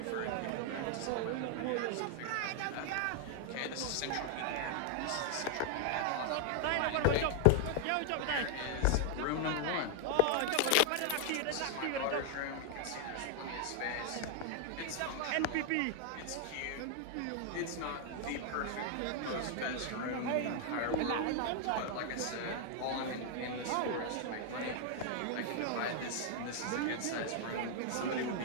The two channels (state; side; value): different; both; correlation 0.00